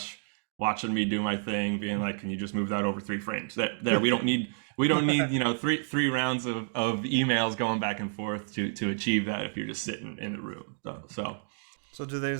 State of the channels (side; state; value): left; silent; digital silence